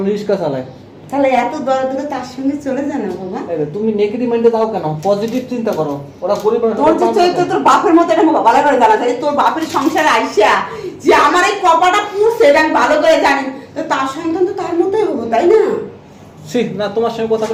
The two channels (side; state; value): both; identical; correlation 1.00